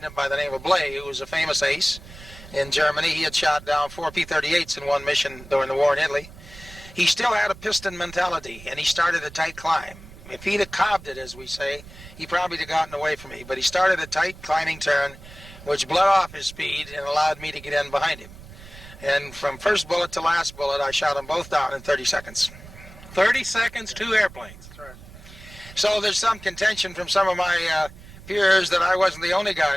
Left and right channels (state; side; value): noise; right; rumble, 18 dB below the sound